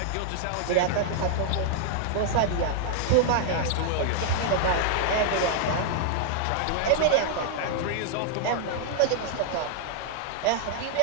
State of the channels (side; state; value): both; different; correlation -0.01